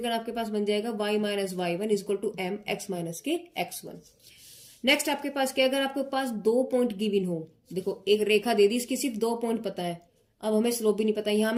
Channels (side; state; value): both; identical; correlation 1.00